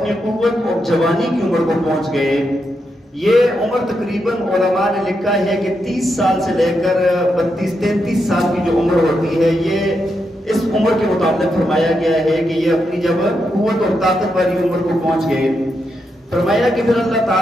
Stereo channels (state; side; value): normal; both; correlation 0.83